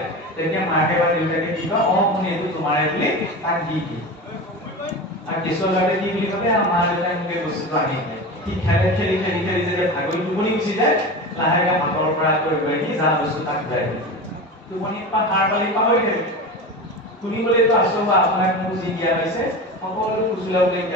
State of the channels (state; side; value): normal; both; correlation 0.27